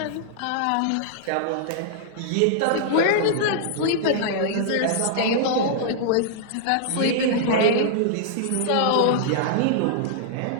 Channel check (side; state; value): both; different; correlation -0.01